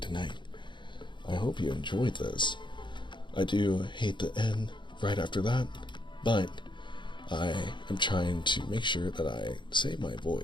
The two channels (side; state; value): right; late; 0.23 ms